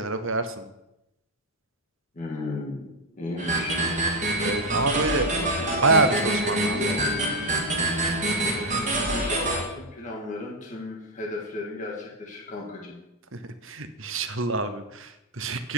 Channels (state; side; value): normal; both; correlation 0.02